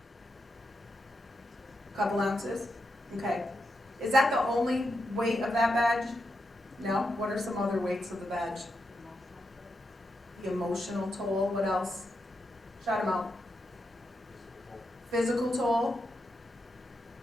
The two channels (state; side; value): normal; both; correlation 0.85